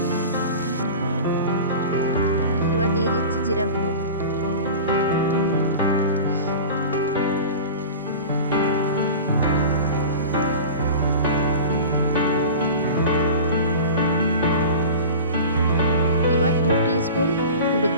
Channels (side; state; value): both; inverted; correlation -0.33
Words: এবার দিয়ে দিচ্ছি জিরা গুঁড়ো। এবার 2 টিস্পুন হলুদ